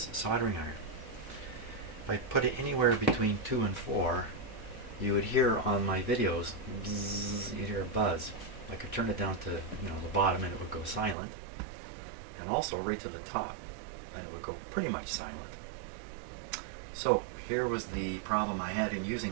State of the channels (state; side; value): drops out; left; at 11.2 s